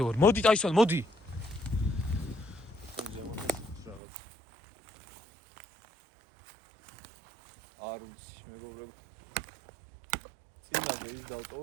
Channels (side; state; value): left; drops out; at 4.0 s